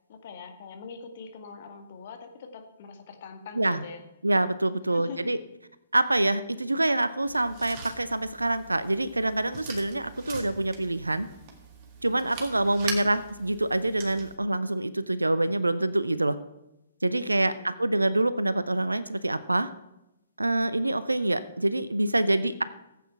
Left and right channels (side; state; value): both; inverted; correlation -0.95